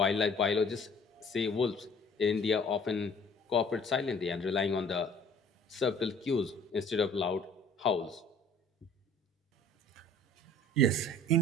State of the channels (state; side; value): normal; both; correlation 0.52